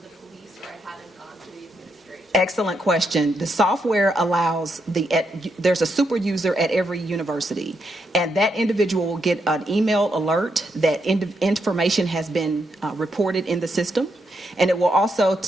the police or I haven't gone to the administration. Excellent question. The software allows there's a super user at every university, and that individual will get an email alert that information has been reported in the system. And it will also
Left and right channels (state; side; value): normal; both; correlation 0.80